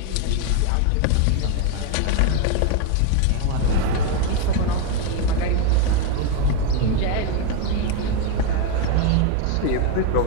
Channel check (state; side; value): different; both; correlation 0.02